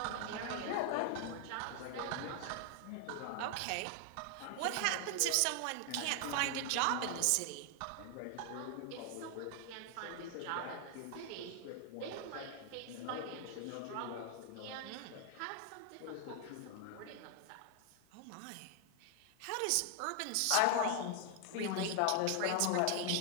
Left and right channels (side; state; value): both; different; correlation 0.00